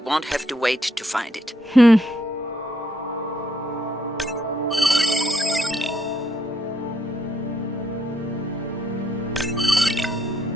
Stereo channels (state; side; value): normal; both; correlation 0.73